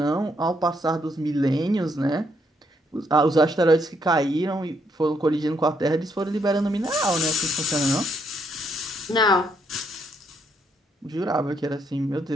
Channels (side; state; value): both; normal; correlation 0.74